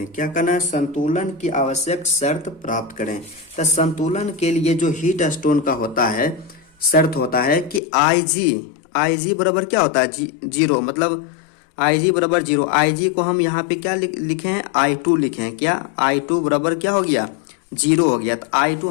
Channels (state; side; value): drops out; right; at 7.8 s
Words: क्या करना है? संतुलन की आवश्यक शर्त प्राप्त करें। तो संतुलन के लिए जो हीट स्टोन का होता है, शर्त होता है कि IG बराबर क्या होता है? जीरो। मतलब IG बराबर 0। IG को हम यहाँ पे क्या लिखे हैं? I2 लिखे हैं। क्या? I2 बराबर क्या हो गया? 0 हो गया। तो I2